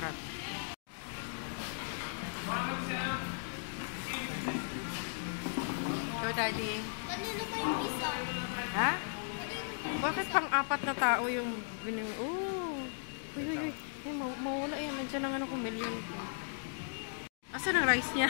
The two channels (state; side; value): silent; right; digital silence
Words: Go, Daddy. Kanino ba yung isa? Ha? Bakit pang-apat na tao yung bining... Oh! Uy, uy, uy. Ay, mawala yan. Nandiyan lang ano kung million ko. Asan ang rice niya?